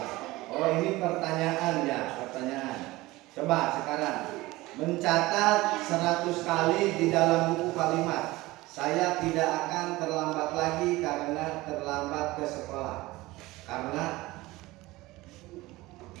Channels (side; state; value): left; quieter; 19.7 dB